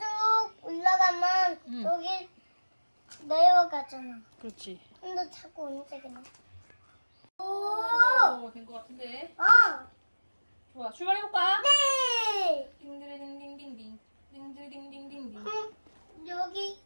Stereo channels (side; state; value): both; inverted; correlation -1.00